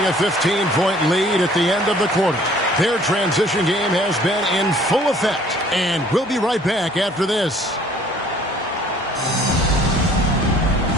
a 15-point lead at the end of the quarter. Their transition game has been in full effect. And we'll be right back after this.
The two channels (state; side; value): normal; both; correlation 0.55